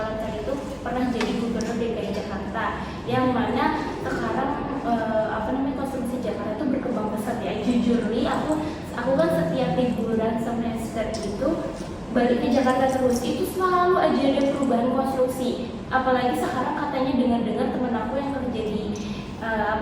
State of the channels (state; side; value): identical; both; correlation 1.00